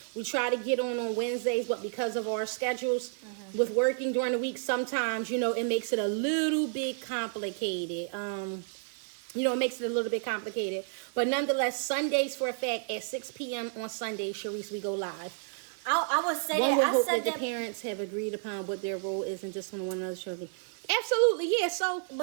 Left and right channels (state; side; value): silent; left; digital silence